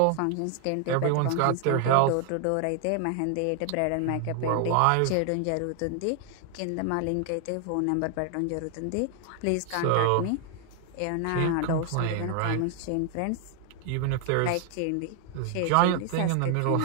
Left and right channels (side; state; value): both; different; correlation 0.00